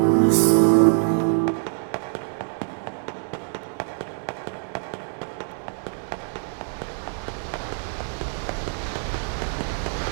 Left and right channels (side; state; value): left; silent; 62 dB below the other